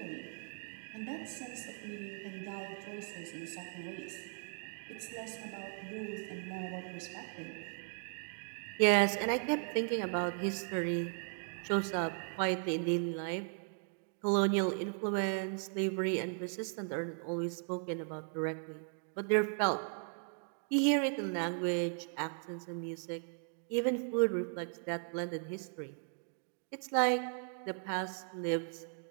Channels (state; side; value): silent; left; 53 dB below the other